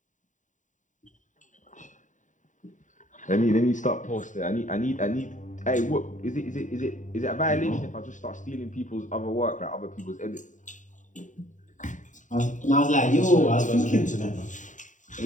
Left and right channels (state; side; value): late; right; 0.36 ms